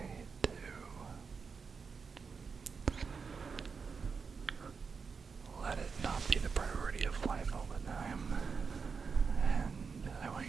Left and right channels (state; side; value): quieter; left; 5.4 dB